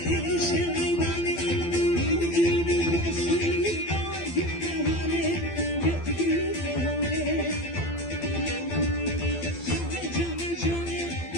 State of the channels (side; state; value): right; late; 12 ms